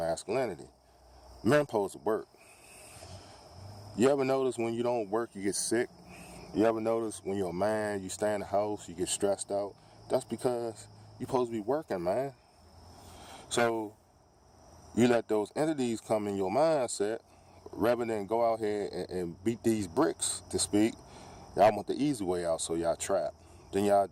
Men supposed to work. You ever notice when you don't work, you get sick? You ever notice when you're a man, you stay in the house, you get stressed out? That's because you're supposed to be working, man. So you let those entities come in your mindset rather than go out here and beat these bricks, to speak. Y'all want the easy way out, so y'all trapped. Then y'all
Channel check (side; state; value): both; identical; correlation 1.00